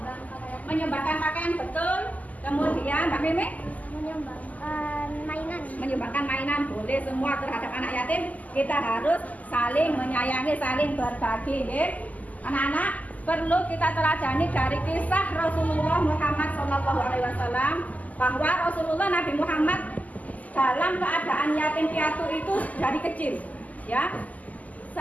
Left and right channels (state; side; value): late; right; 0.077 ms